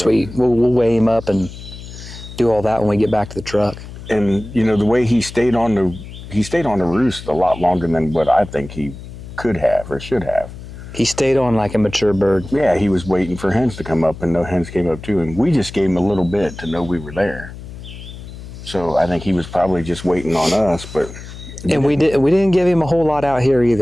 We'll weigh him up and do all that when we get back to the truck. And, the way he stayed on the roost a lot longer than what I think he could have or should have. He stayed on like a mature bird. Yeah, he was waiting for hens to come up, and no hens came up to him. We just gave him a little bit to know we were there. So I think he was probably just waiting on us, but... And we didn't give him a whole lot out here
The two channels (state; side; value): noise; left; hum, 13 dB below the sound